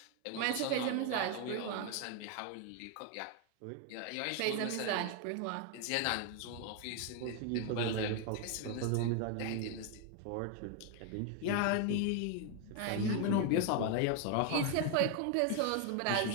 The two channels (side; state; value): both; different; correlation 0.01